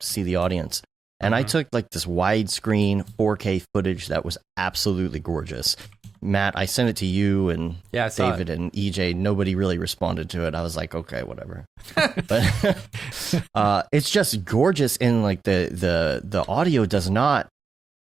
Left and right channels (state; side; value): quieter; left; 5.2 dB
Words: to see the audience. And I took like this widescreen 4K footage that was absolutely gorgeous. Matt, I sent it to you and David and EJ. Nobody really responded to it. I was like, okay, whatever. But it's just gorgeous, and like the audio does not